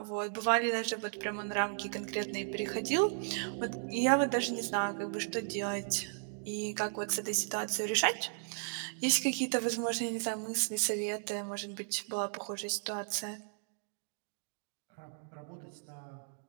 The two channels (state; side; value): silent; left; digital silence